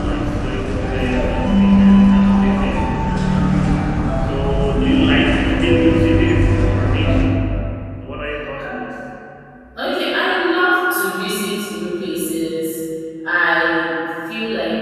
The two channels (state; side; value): identical; both; correlation 1.00